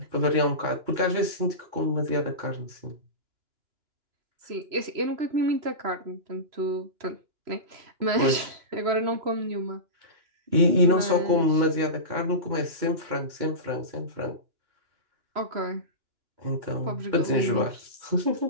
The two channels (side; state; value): left; late; 3.0 ms